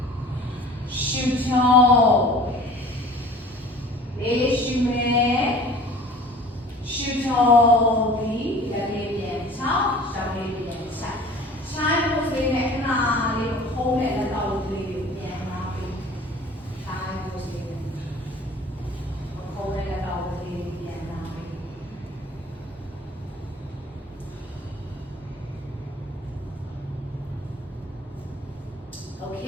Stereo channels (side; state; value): both; normal; correlation 0.46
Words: ရှူချောလေးရှူမယ်ရှူချောပြီးတကလေးပြန်ချောင်းရှောင်းလေးပြန်ဆိုင်ချိုင်းဖို့စိတ်နဲ့ခဏလေးခုံးနဲ့လက်တော်လေးကိုပြန်လာပြီးချိုင်းဖို့စိတ်နဲ့ခုံးနဲ့လက်တော်လေး Good